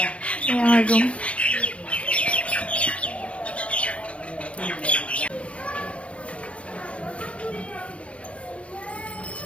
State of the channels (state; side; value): late; right; 0.062 ms